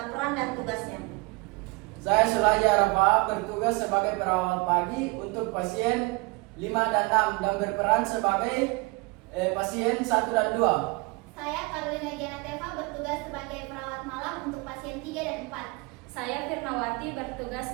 peran dan tugasnya. Saya Sulaiman Arafa bertugas sebagai perawat pagi untuk pasien 5 dan 6 dan berperan sebagai pasien 1 dan 2. Saya Carolina Janateva bertugas sebagai perawat malam untuk pasien 3 dan 4. Saya Firnawati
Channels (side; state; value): left; quieter; 26.8 dB